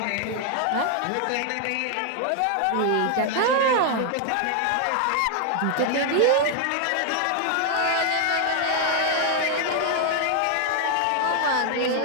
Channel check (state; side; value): different; both; correlation 0.00